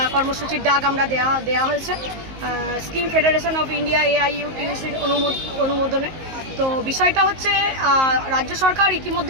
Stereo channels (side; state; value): left; late; 19 ms